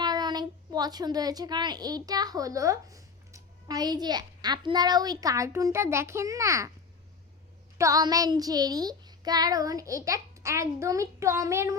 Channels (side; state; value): right; quieter; 5.1 dB